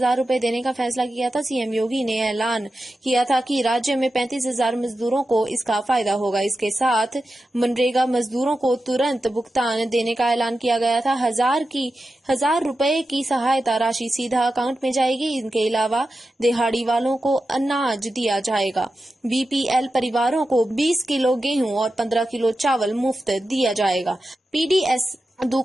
रुपए देने का फैसला किया था। सीएम योगी ने ऐलान किया था कि राज्य में 35,000 मजदूरों को इसका फायदा होगा। इसके साथ मनरेगा मजदूरों को तुरंत भुगतान देने का ऐलान किया गया था। 1,000 रुपए की सहायता राशि सीधा अकाउंट में जाएगी। इनके अलावा दिहाड़ी वालों को अनाज दिया जाएगा। BPL परिवारों को 20 किलो गेहूं और 15 किलो चावल मुफ्त दिया जाएगा। PDS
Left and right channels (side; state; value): both; normal; correlation 0.91